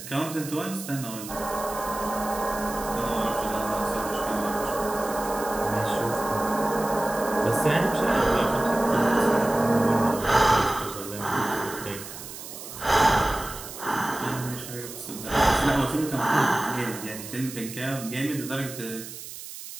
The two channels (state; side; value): noise; right; hiss, 12 dB below the sound